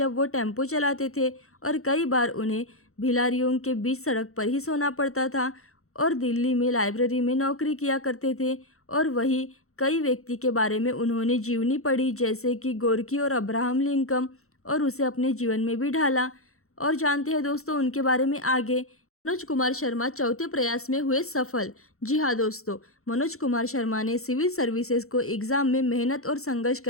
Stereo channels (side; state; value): right; late; 0.63 ms